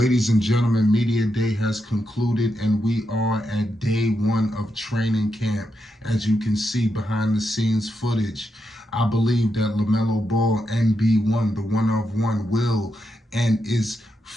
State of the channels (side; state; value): both; normal; correlation 0.84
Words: and gentlemen, Media Day has concluded and we are at day one of training camp. As you can see behind the scenes footage, I believe that Lamelo Ball, NB1, the one of one, will and is